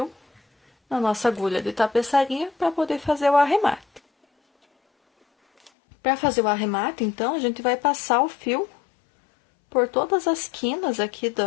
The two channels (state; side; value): drops out; right; at 5.7 s